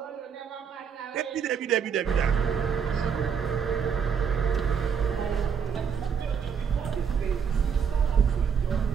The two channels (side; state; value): left; quieter; 6.9 dB